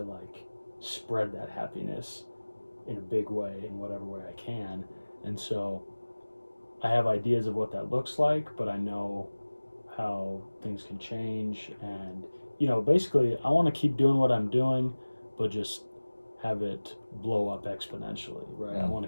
like spread that happiness in a big way, in whatever way I can. And so I have ideas of what that looks like, but I know how things can change. And, basically I want to keep doing what I'm doing, but just have it blow up exponentially, right? I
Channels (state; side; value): inverted; both; correlation -1.00